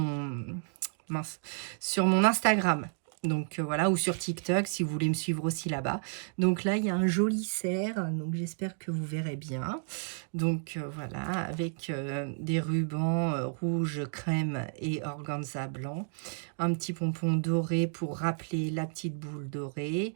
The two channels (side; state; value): left; silent; 57 dB below the other